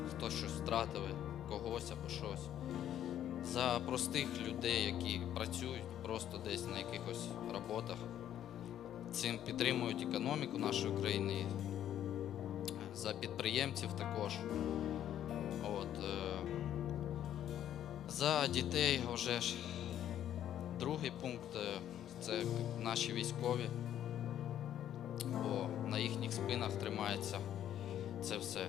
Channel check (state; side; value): quieter; right; 10.9 dB